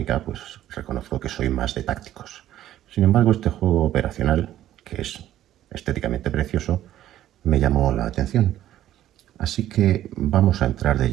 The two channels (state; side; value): quieter; left; 12.7 dB